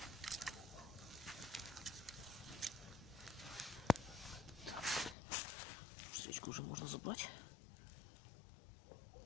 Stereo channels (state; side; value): drops out; right; at 5.2 s